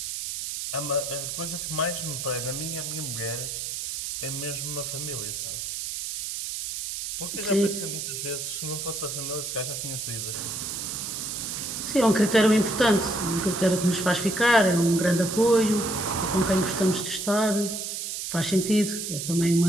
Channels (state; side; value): noise; right; hiss, 4 dB below the sound